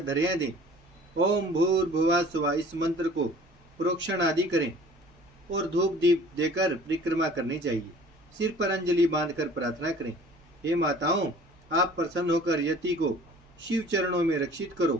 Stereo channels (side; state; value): both; normal; correlation 0.49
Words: धैर्य दें। ओम भूर्भुवः स्वः इस मंत्र को प्रोक्षण आदि करें और धूप दीप देकर परिक्रमा करनी चाहिए। सिर पर अंजलि बांधकर प्रार्थना करें, हे माताओं, आप प्रसन्न होकर यति को शिव चरणों में रक्षित